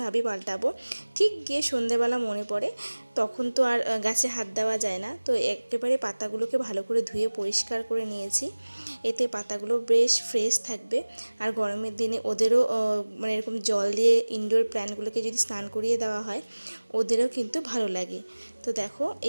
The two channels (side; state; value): both; inverted; correlation -1.00